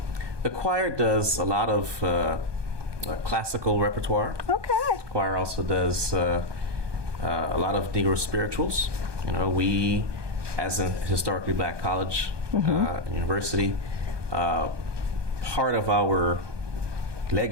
The choir does a lot of classical repertoire. Okay. The choir also does a lot of Negro spirituals. We, as a historically black college, university, part of our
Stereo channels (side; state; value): left; late; 1.2 ms